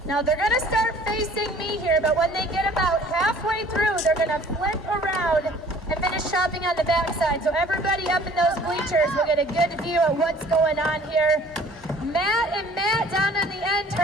Now they're gonna start facing me here, but when they get about halfway through, they're gonna flip around and finish chopping on the backside. So everybody up in those bleachers will get a good view of what's going on here. Matt and Matt down on the end,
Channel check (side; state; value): both; normal; correlation 0.52